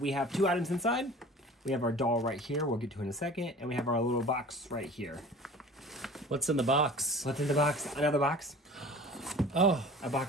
have two items inside. We have our doll right here, we'll get to in a second, and we have our little box right here. What's in the box? What's in the box? Another box. Oh, A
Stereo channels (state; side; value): normal; both; correlation 0.42